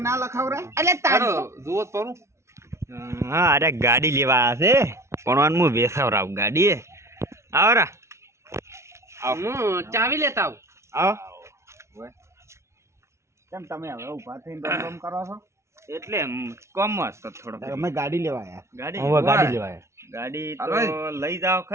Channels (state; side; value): late; left; 0.13 ms